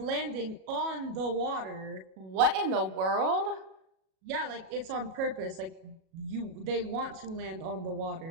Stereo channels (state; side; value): late; left; 37 ms